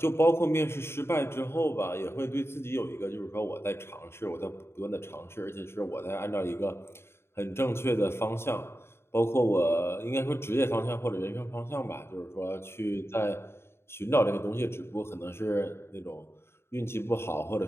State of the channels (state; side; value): late; right; 0.12 ms